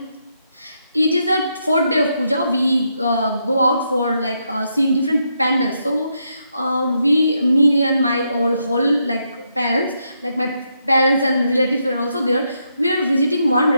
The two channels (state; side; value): inverted; both; correlation -0.79